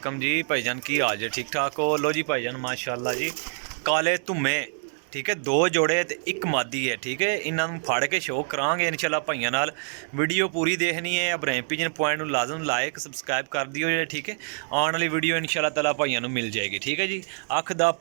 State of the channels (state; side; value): silent; left; digital silence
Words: जी भाईजान की हाल जे ठीक ठाक हो। लो जी भाईजान माशाल्लाह जी काले धुम्मे ठीक है, दो जोड़े ते एक मादी है ठीक है। इन्हों फड़ के शो करांगे इंशाल्लाह भाइयों नाल। वीडियो पूरी देखनी है। इब्राहिम पिजन पॉइंट में लाजम लाइक सबसक्राइब कर दियो जे ठीक है। आने वाली वीडियो इंशाल्लाह ताला भाइयों नूं मिल जाएगी ठीक है जी। अख दा